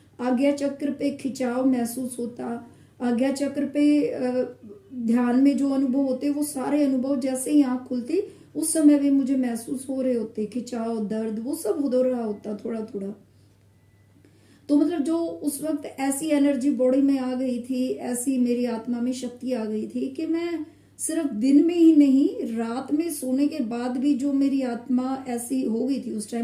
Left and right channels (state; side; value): identical; both; correlation 1.00